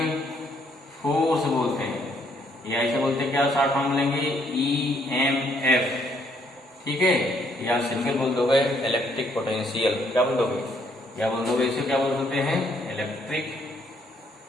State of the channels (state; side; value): normal; both; correlation 0.69